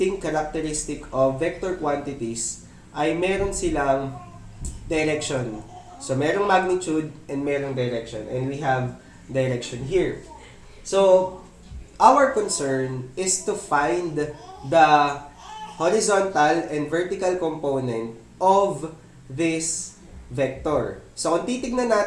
characteristic of vector quantities ay meron silang direction. So, merong magnitude and merong direction. And we have direction here. So, our concern is to find the horizontal and vertical component of this vector. So, kung titignan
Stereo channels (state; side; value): identical; both; correlation 1.00